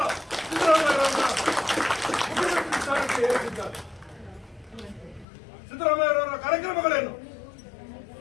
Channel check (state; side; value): drops out; right; at 5.2 s